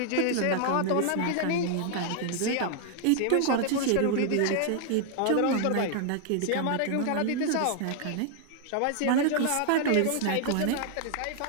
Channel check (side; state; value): both; different; correlation 0.00